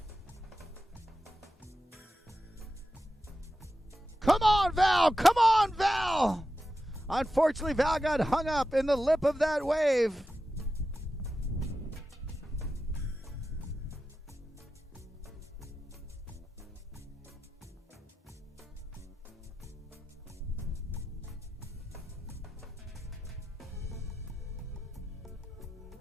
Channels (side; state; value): both; normal; correlation 0.91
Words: Come on, Val! Come on, Val! Unfortunately, Val got hung up in the lip of that wave.